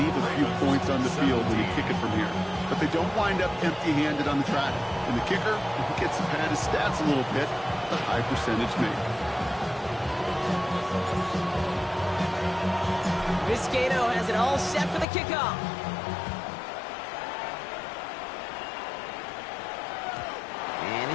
a few points on the field when you kick it from here. But they don't wind up empty-handed on the track. And the kicker gets to pad his stats a little bit, the high percentage make. Vizcaino has it all set for the kickoff. And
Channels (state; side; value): drops out; right; at 15.1 s